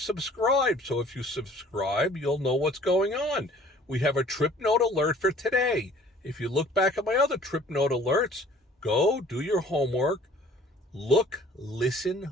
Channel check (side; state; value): both; normal; correlation 0.52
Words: So if you subscribe, you'll know what's going on. We have a trip note alert for today. If you look back at my other trip note alerts, go do your homework. Look, listen,